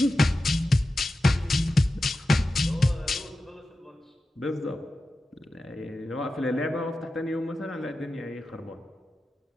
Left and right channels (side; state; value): both; normal; correlation 0.93